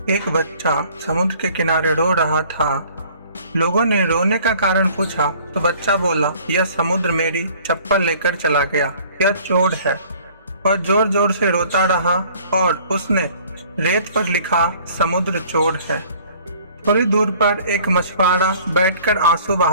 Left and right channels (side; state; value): both; inverted; correlation -0.53